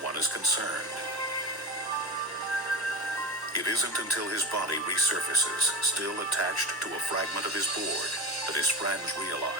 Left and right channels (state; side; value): normal; both; correlation 0.26